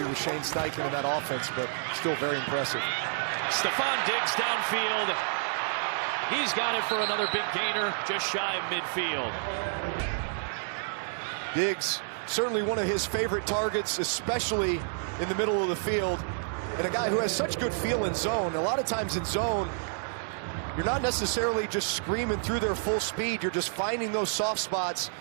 with Shane Steichen in that offense, but still very impressive. Stephon Diggs downfield. He's got it for another big gainer, just shy of midfield. Diggs, certainly one of his favorite targets, especially in the middle of the field. And a guy who has such good feel in zone. A lot of times in zone, you're not necessarily just screaming through their full speed. You're just finding those soft spots.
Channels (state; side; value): silent; left; digital silence